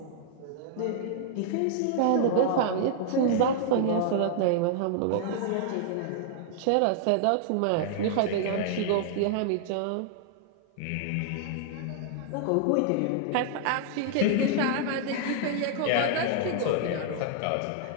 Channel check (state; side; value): different; both; correlation -0.01